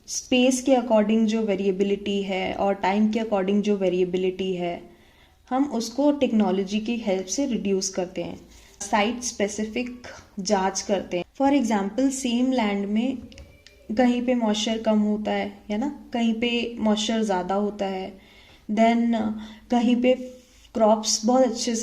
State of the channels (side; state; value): both; identical; correlation 1.00